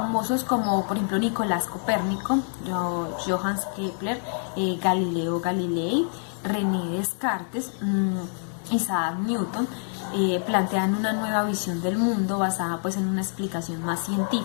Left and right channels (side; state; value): right; silent; 56 dB below the other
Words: como por ejemplo Nicolás Copérnico, Johannes Kepler, Galileo Galilei, René Descartes, Isaac Newton, plantean una nueva visión del mundo basada pues en una explicación más